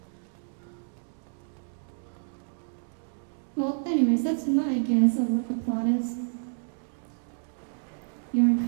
Well, anyways, that's my guess of what the plot is. You're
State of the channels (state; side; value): silent; left; digital silence